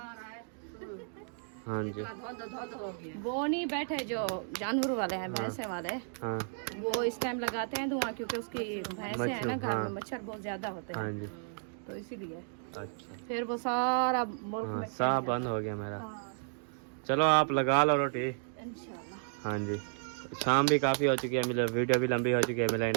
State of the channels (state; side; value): silent; left; digital silence